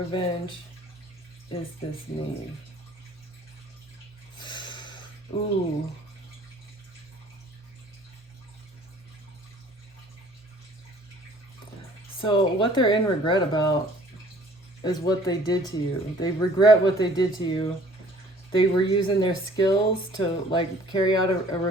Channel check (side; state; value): both; normal; correlation 0.54